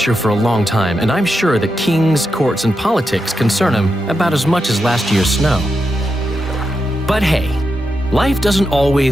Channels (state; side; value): normal; both; correlation 0.86